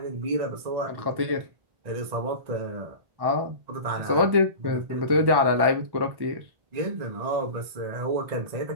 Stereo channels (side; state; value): left; late; 1.1 ms